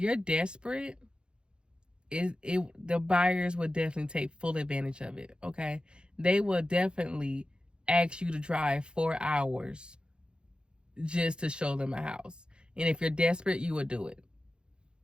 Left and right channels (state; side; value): late; left; 0.052 ms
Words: desperate, the buyers will definitely take full advantage of it, okay? They will definitely ask you to drive 4 hours just to show them a house. And if you're desperate, you will do it.